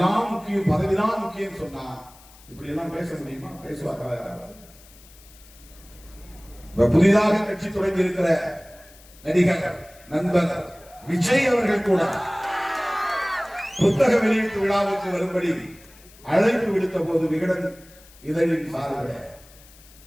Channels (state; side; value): noise; left; hiss, 24 dB below the sound